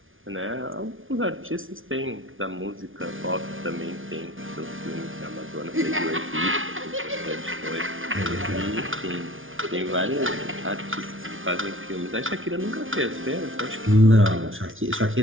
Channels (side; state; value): left; late; 0.58 ms